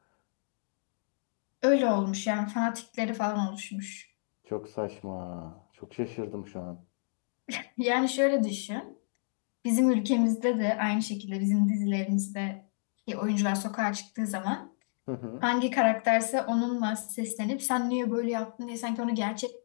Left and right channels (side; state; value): right; silent; digital silence